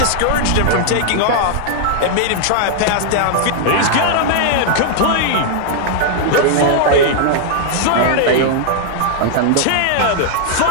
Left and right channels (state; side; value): different; both; correlation 0.00